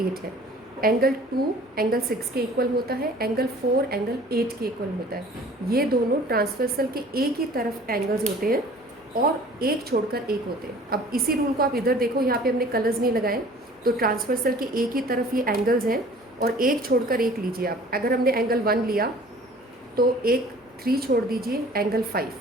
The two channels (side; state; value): both; normal; correlation 0.49